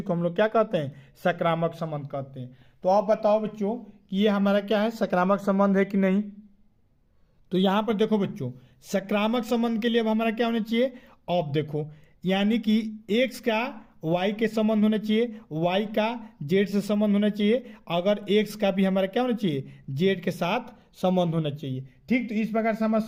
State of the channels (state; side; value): identical; both; correlation 1.00